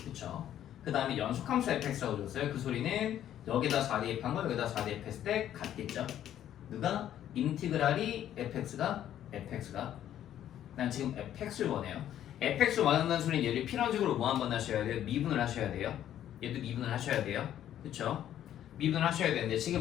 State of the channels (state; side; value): quieter; right; 11.2 dB